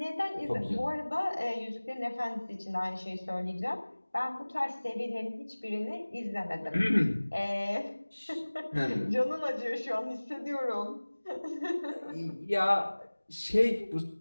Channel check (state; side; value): inverted; both; correlation -1.00